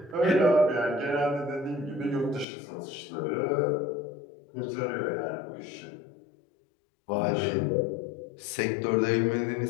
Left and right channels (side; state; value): right; drops out; at 2.5 s